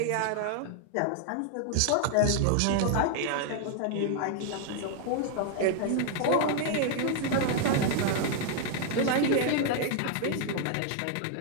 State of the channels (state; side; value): different; both; correlation 0.00